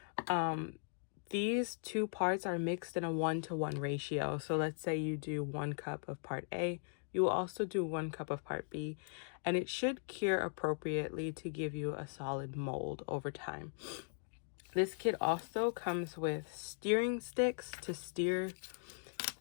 These 2 parts are mixed in a 1-to-1 ratio. So let's say you do 1 cup of part A, you will also do 1 cup of part B, and it should cure appropriately to give you a solid mold over time. This kit also comes with steering sticks to steer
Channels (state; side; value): silent; right; digital silence